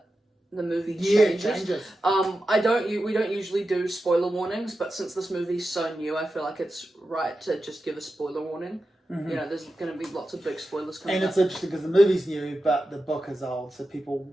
the movie changes. We don't usually do spoiler warnings, but since this movie's so new, I feel like it's right to just give a spoiler warning. There's going to be lots of big spoilers coming up. And it's interesting because the movie's new, but the book is old, so people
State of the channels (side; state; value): both; normal; correlation 0.91